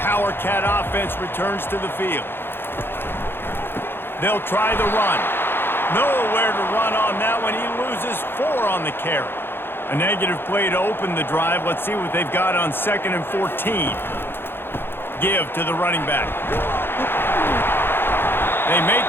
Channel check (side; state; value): right; late; 0.10 ms